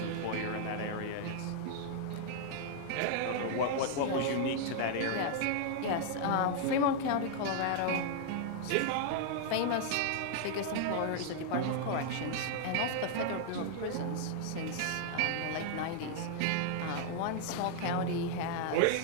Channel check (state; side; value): different; both; correlation 0.00